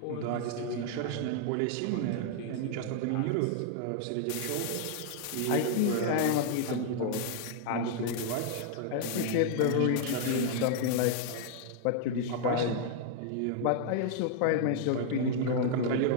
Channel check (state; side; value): different; both; correlation 0.00